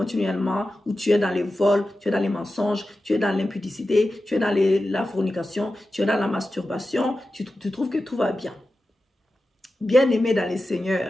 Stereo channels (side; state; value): both; normal; correlation 0.93